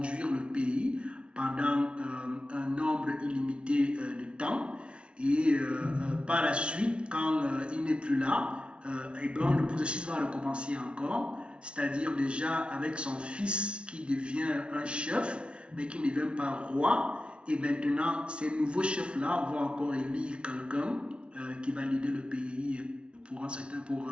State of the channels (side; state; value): left; late; 0.058 ms